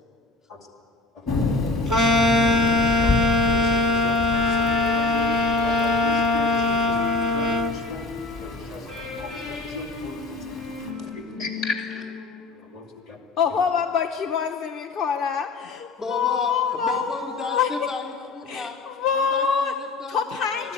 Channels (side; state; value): right; quieter; 3.4 dB